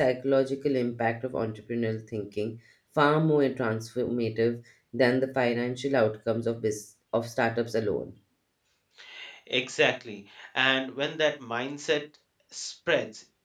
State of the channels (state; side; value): identical; both; correlation 1.00